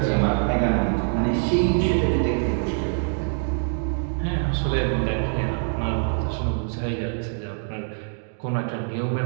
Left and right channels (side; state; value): left; silent; digital silence